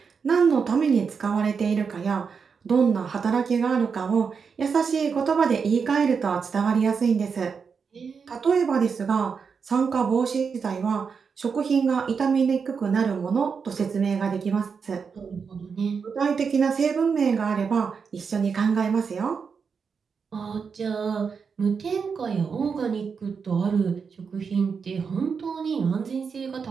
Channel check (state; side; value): quieter; left; 5.8 dB